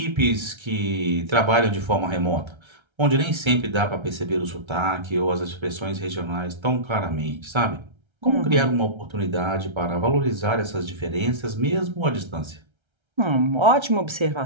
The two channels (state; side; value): late; left; 1.3 ms